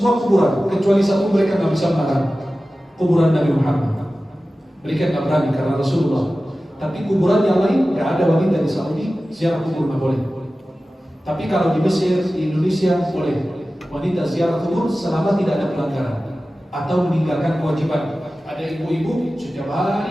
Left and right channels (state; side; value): normal; both; correlation 0.95